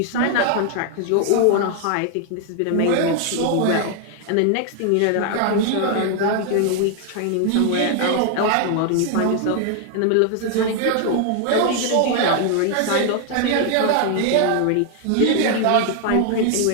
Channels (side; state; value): both; different; correlation 0.00